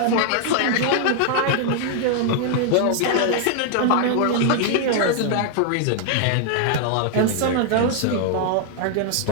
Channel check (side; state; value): both; different; correlation 0.00